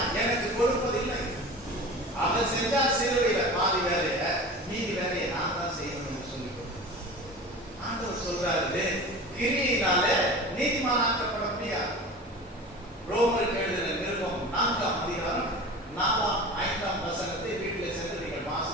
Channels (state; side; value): normal; both; correlation 0.35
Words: எனக்கு கொடுப்பதில்லை. அவர் செஞ்சால் சிலுவையில பாதி வேலைய மீதி வேலையை நான் தான் செய்யணும் என்று சொல்லி ஆண்டவர் சொல்றாரு, கிரியினால நீதிமானாக்கப்பட முடியாது. ரோமருக்கு எழுதின நிருபம் 4ஆம் அதிகாரம் 4ஆம் 5ஆம் வசனத்தை வீட்டில் சென்று நீங்கள்